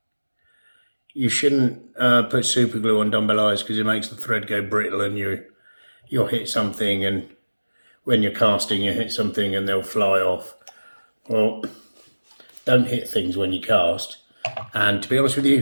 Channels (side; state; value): both; inverted; correlation -1.00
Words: you shouldn't put super glue on dumbbell eyes because it makes the thread go brittle and you'll hit something, and when you're casting you hit something and they'll fly off. Well, don't hit things when you cast, and to be honest with